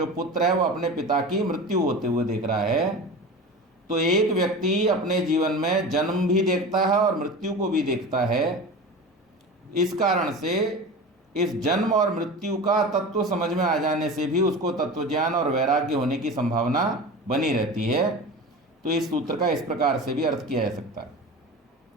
पुत्र है वो अपने पिता की मृत्यु होते हुए देख रहा है। तो एक व्यक्ति अपने जीवन में जन्म भी देखता है और मृत्यु को भी देखता है। इस कारण से इस जन्म और मृत्यु का तत्व समझ में आ जाने से भी उसको तत्वज्ञान और वैराग्य होने की संभावना बनी रहती है। तो इस सूत्र का इस प्रकार से भी अर्थ किया जा सकता है।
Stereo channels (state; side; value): normal; both; correlation 0.31